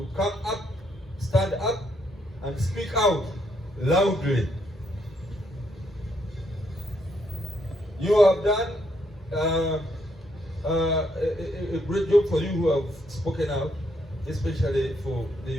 come up, stand up, and speak out loudly. You have done a great job for you who have spoken out, especially for the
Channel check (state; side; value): normal; both; correlation 0.74